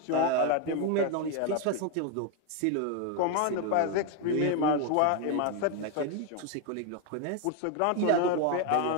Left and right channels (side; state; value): both; different; correlation 0.01